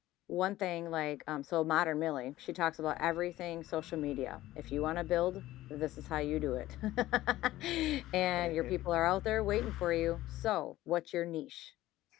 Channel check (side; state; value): right; quieter; 15.8 dB